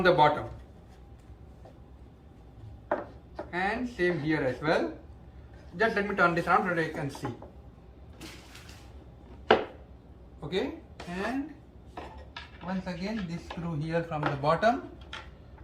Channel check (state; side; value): identical; both; correlation 1.00